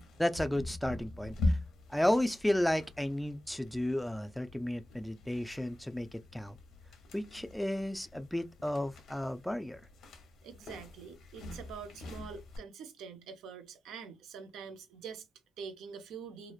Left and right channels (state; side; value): normal; both; correlation 0.96